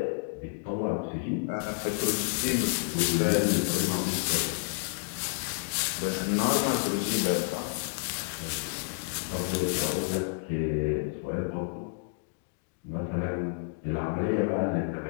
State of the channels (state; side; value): silent; right; 56 dB below the other